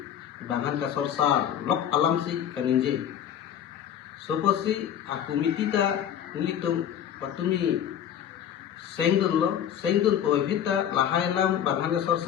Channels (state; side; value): quieter; right; 9.7 dB